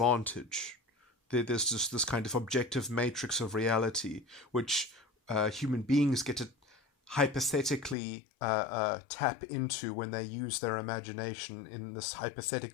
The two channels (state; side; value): drops out; right; at 8.0 s